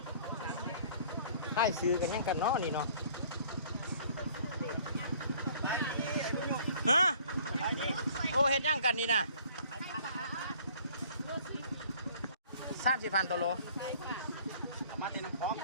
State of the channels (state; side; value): inverted; both; correlation -0.54